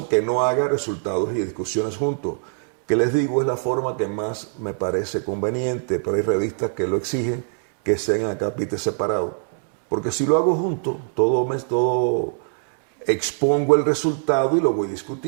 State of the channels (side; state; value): left; silent; digital silence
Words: que no haga resultados y discusiones juntos, que les digo es la forma que más me parece conveniente, pero hay revistas que lo exigen que sean a capítulos separados. Porque si lo hago junto, todo expongo el resultado y lo voy